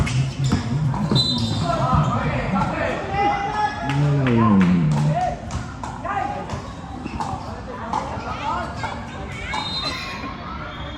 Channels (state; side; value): identical; both; correlation 1.00